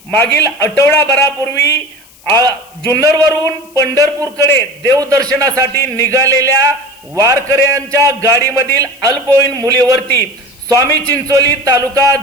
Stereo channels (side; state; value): left; noise; hiss, 27 dB below the sound